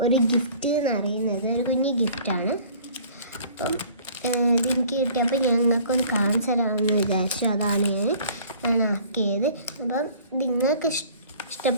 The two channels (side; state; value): both; inverted; correlation -0.51